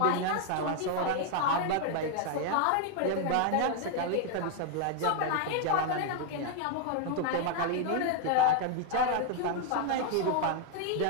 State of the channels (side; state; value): both; different; correlation 0.00